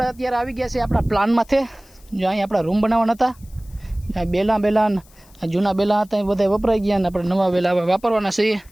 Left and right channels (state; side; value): noise; left; hiss, 28 dB below the sound